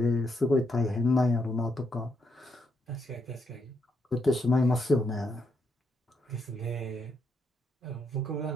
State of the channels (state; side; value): normal; both; correlation 0.78